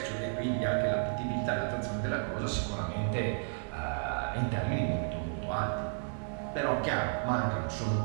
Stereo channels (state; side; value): silent; left; digital silence